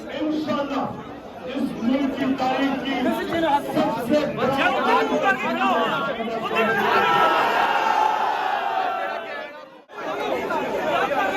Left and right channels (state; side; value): identical; both; correlation 1.00